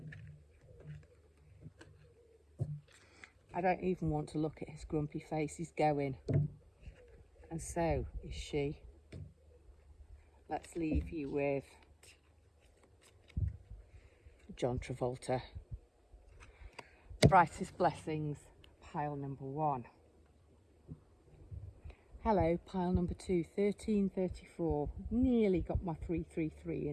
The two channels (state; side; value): identical; both; correlation 1.00